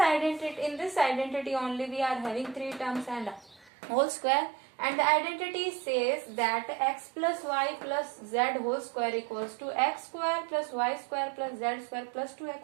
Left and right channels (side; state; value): left; drops out; at 3.7 s